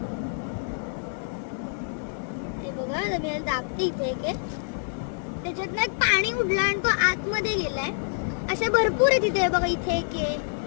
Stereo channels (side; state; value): right; silent; digital silence